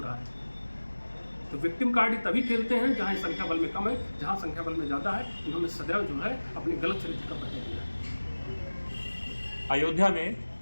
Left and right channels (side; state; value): both; inverted; correlation -1.00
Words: रहा है। तो विक्टिम कार्ड ही तभी खेलते हैं जहाँ संख्या बल में कम है, जहाँ संख्या बल में ज़्यादा है इन्होंने सदैव जो है अपने गलत चरित्र का परिचय दिया है। अयोध्या में